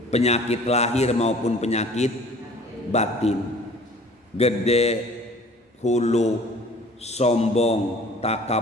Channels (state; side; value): normal; both; correlation 0.49